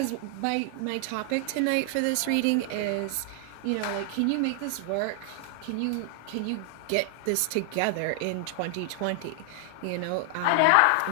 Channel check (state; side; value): different; both; correlation 0.00